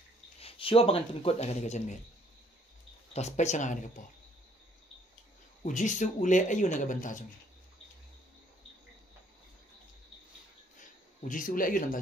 Siapa bangan pengikut akan dikajian mer. Tas pecah akan dikapo. Ujisu ule ayu naga bentajung. Ujisu ule ayu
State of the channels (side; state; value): both; normal; correlation 0.63